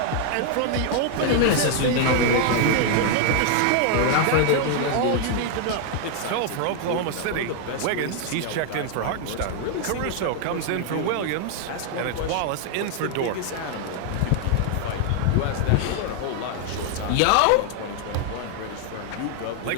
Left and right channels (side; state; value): both; different; correlation 0.00